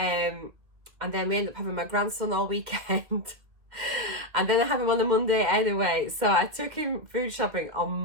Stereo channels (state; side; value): late; left; 2.4 ms